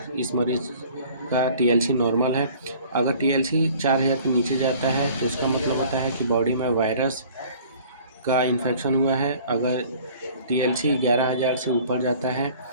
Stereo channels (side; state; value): both; inverted; correlation -0.50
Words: इस मरीज का टीएलसी नॉर्मल है। अगर टीएलसी 4000 के नीचे जाता है तो इसका मतलब होता है कि बॉडी में वायरस का इन्फेक्शन हुआ है। अगर टीएलसी 11000 से ऊपर जाता है